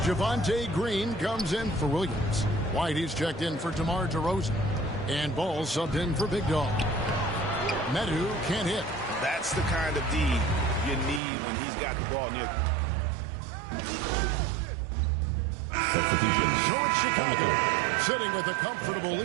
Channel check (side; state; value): left; drops out; at 11.2 s